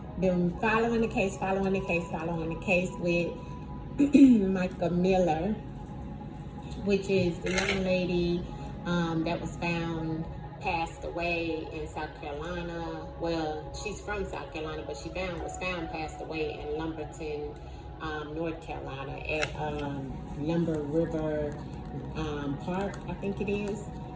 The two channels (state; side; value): identical; both; correlation 1.00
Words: been following the case with MICA Miller, which is the young lady that was found passed away in South Carolina. Well, she's from South Carolina, but she was found passed away in Lumberton, North Carolina at Lumber River Park, I think it is.